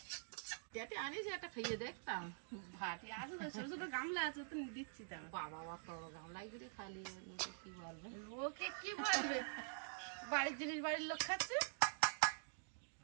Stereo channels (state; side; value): silent; left; digital silence